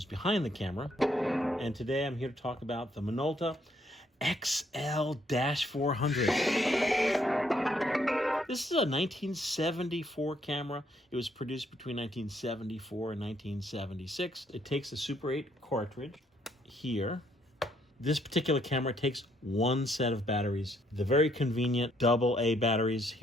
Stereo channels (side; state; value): both; normal; correlation 0.70